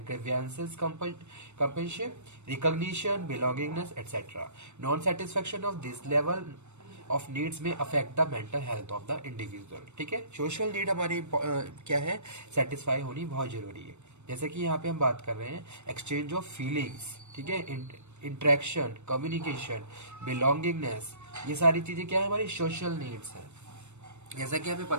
grievances, companionship, recognition, belongingness, etc. Non-satisfaction of this level of needs may affect the mental health of the individual. ठीक है, social need हमारी क्या है, satisfy होनी बहुत जरूरी है. जैसे कि यहाँ पे हम बात कर रहे हैं एक्सचेंज ऑफ फीलिंग्स. ठीक है, इंटरेक्शन, कम्युनिकेशन, बिलोंगिंगनेस, ये सारी चीजें क्या है, हमारी सोशल नीड्स है. जैसा कि हमें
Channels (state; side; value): late; left; 0.82 ms